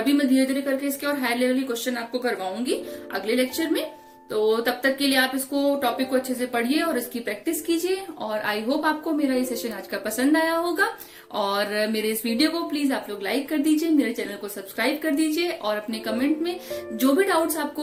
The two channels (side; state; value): both; identical; correlation 1.00